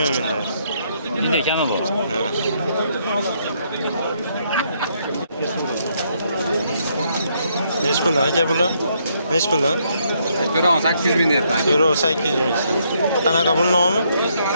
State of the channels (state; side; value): inverted; both; correlation -0.73